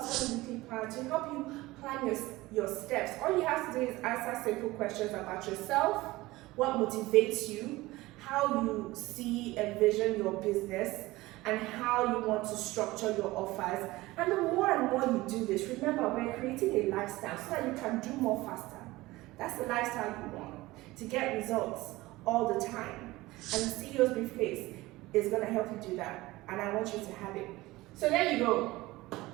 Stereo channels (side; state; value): left; quieter; 19.3 dB